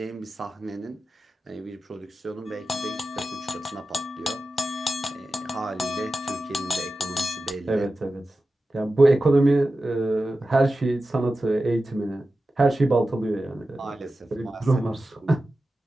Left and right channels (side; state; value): both; normal; correlation 0.93